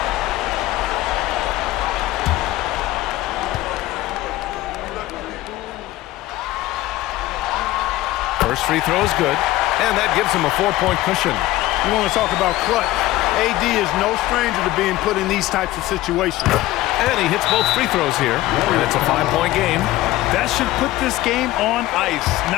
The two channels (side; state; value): right; quieter; 16.6 dB